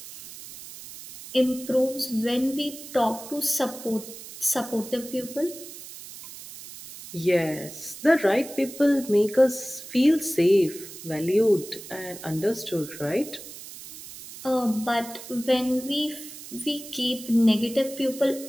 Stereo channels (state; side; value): noise; right; hiss, 14 dB below the sound